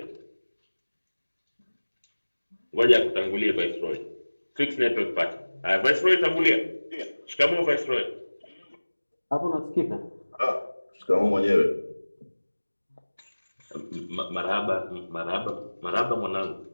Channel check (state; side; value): inverted; both; correlation -1.00